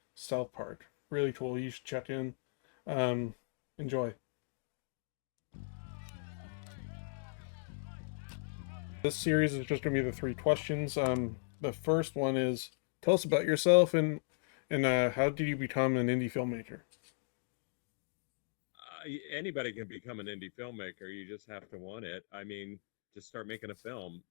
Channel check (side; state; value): right; silent; digital silence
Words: South Park. Really cool. You should check in. Um, Enjoy. This series is just going to be the three questions. The first one is, tell us about yourself and how did you become an indie filmmaker? Anybody can become an indie filmmaker. You just have to want it. I mean, just start making a film.